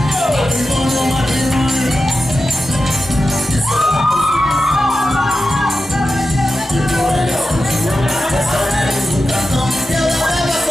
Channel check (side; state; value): both; normal; correlation 0.92